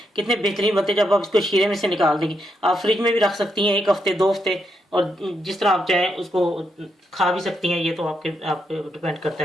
कितने बेहतरीन बनते जब आप इसको शीरे में से निकाल देंगे। आप फ्रिज में भी रख सकती हैं 1 हफ्ते 2 हफ्ते और जिस तरह आप चाहें उसको खा भी सकती हैं। ये तो आप पे डिपेंड करता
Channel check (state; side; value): normal; both; correlation 0.80